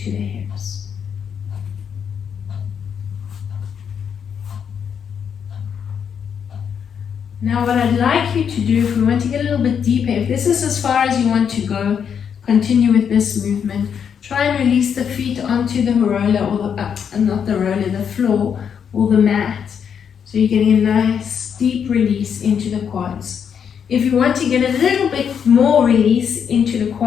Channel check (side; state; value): right; quieter; 7.5 dB